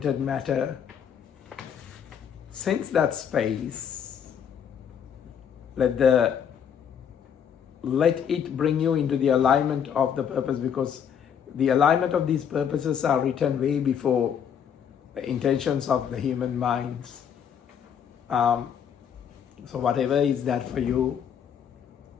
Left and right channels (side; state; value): right; quieter; 8.1 dB